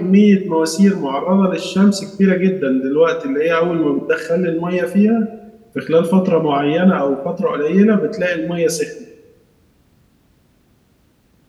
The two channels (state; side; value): identical; both; correlation 1.00